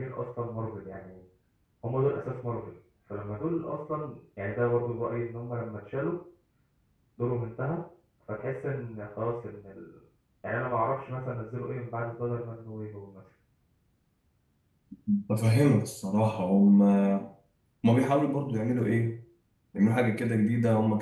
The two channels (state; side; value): identical; both; correlation 1.00